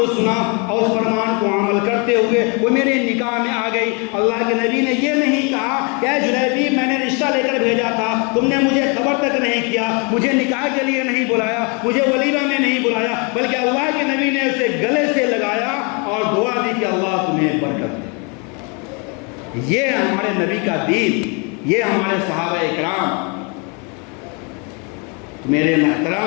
سنا اور اس فرمان کو عمل کرتے ہوئے وہ میرے نکاح میں آ گئی۔ اللہ کے نبی نے یہ نہیں کہا کہ اے جلیبیب میں نے رشتہ لے کر بھیجا تھا، تم نے مجھے خبر تک نہیں کیا، مجھے نکاح کے لیے نہیں بلایا، مجھے ولیمہ میں نہیں بلایا، بلکہ اللہ کے نبی نے اسے گلے سے لگایا اور دعا دی کہ اللہ تمہیں برکت دے۔ یہ ہمارے نبی کا دین، یہ ہمارے صحابہ اکرام۔ میرے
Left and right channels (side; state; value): right; quieter; 33.5 dB